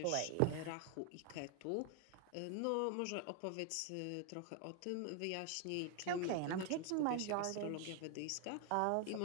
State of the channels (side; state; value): both; different; correlation 0.00